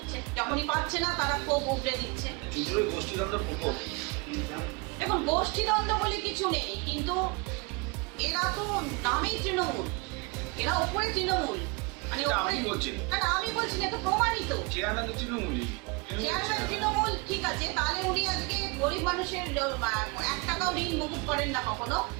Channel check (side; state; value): left; quieter; 28.7 dB